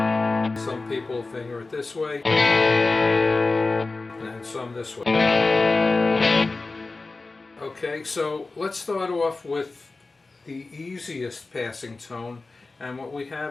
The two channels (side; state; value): right; quieter; 3.6 dB